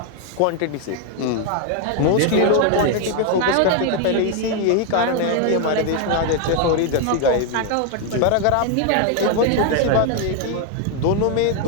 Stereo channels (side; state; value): both; different; correlation 0.00